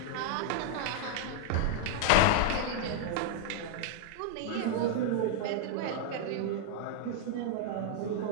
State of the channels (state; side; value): different; both; correlation -0.01